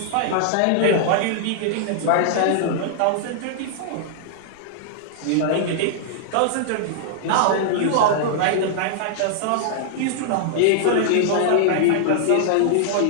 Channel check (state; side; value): different; both; correlation -0.01